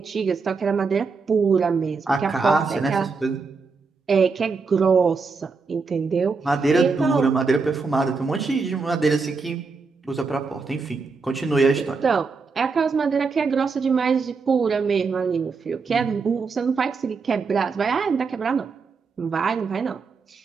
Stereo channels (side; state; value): left; quieter; 4.7 dB